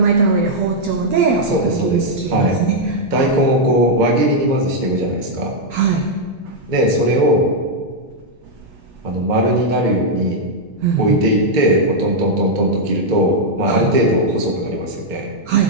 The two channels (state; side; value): normal; both; correlation -0.03